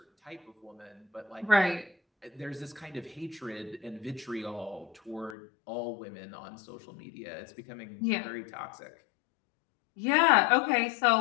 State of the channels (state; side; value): drops out; right; at 5.4 s